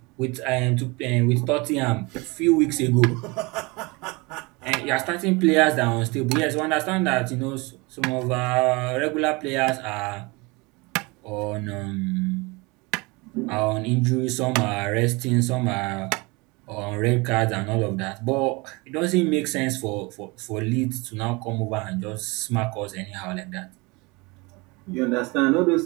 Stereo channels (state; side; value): quieter; left; 26.1 dB